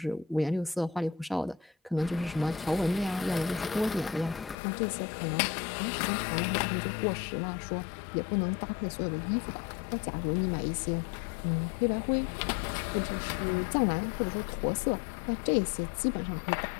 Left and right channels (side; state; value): right; drops out; at 4.5 s